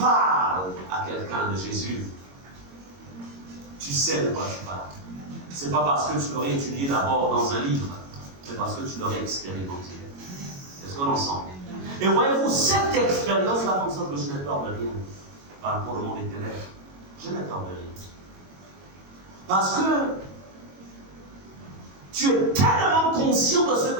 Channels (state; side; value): late; left; 22 ms